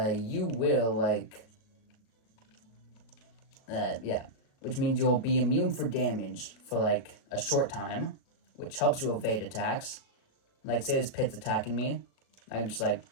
will, like, which means you'll be immune for damage for, like, a short time, which helps you evade attacks. Like, say this Pit's attacking me, I can just, like,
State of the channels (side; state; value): right; late; 37 ms